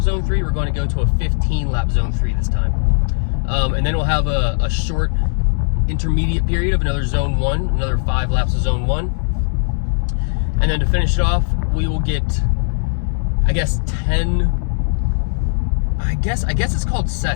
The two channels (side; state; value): right; silent; digital silence